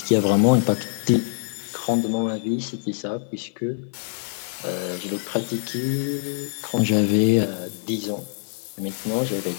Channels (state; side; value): silent; right; 56 dB below the other